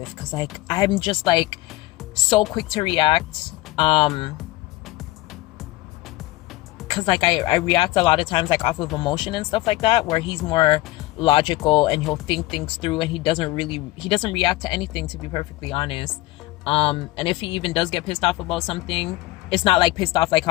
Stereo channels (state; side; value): quieter; right; 18.7 dB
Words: Because, like, I'm just, like, so quick to react. Because, like, I react a lot of times, like, off of emotion and stuff like that, where he's more logical and he'll think things through, and he doesn't react to anything, to be perfectly honest. And if he even does get pissed off about something, it's not like pissed off like